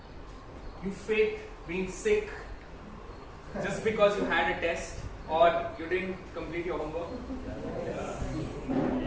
you faked being sick just because you had a test or you didn't complete your homework?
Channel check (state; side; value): identical; both; correlation 1.00